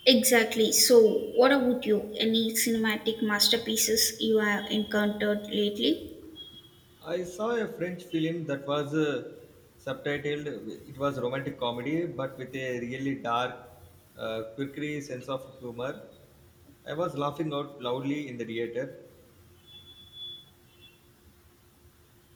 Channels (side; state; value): both; identical; correlation 1.00